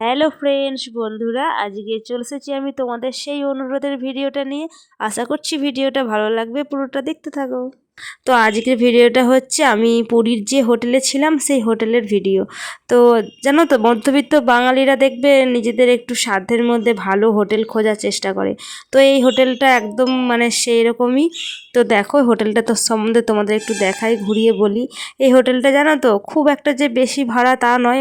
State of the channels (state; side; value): identical; both; correlation 1.00